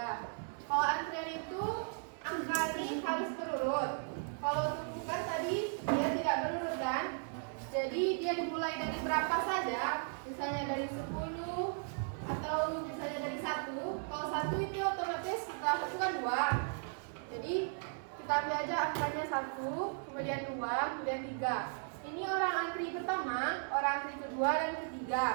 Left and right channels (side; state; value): left; silent; 54 dB below the other